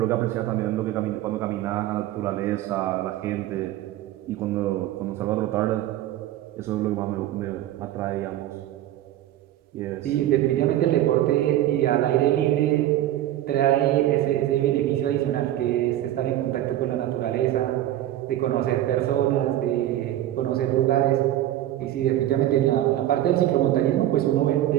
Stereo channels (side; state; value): left; quieter; 13.3 dB